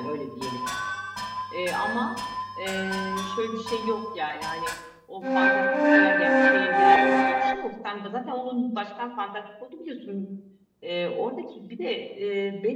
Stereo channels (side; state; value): both; identical; correlation 1.00